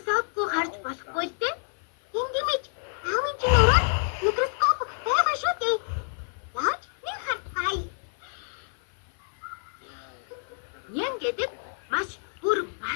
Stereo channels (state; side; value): silent; right; 55 dB below the other